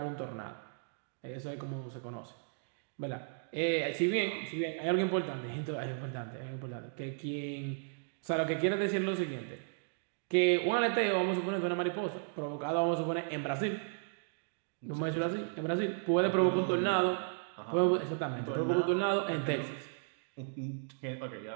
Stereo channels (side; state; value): left; silent; digital silence